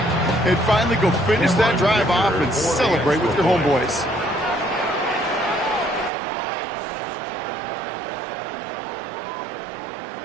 And finally go finish that drive off and celebrate with your homeboys.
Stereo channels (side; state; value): left; drops out; at 6.1 s